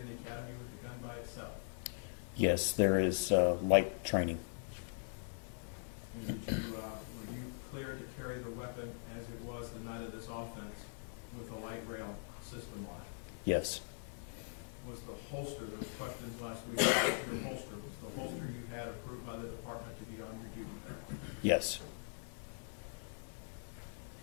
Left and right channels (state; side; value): silent; right; 51 dB below the other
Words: the academy with the gun by itself? Yes, there is light training. And did you, were you cleared to carry the weapon as it was the night of this offense with a light rail system on it? Yes. Was the holster, there was questions last week about your holster, was the holster you had approved by the department to be on your duty belt? Yes.